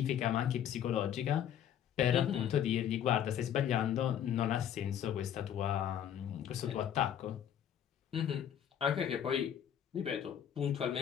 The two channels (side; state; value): right; quieter; 9.7 dB